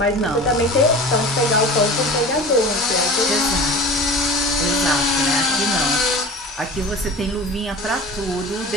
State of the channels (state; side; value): normal; both; correlation 0.37